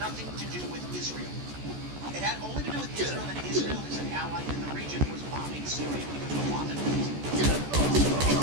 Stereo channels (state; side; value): late; left; 14 ms